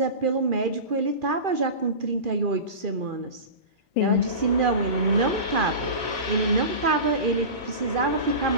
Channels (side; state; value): left; late; 2.4 ms